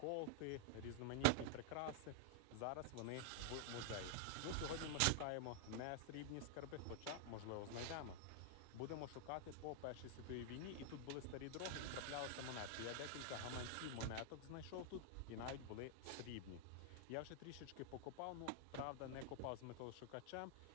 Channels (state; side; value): different; both; correlation 0.00